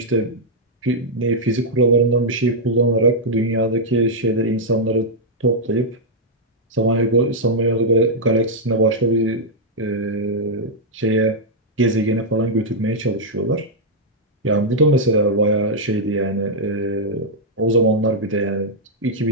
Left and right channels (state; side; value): normal; both; correlation -0.05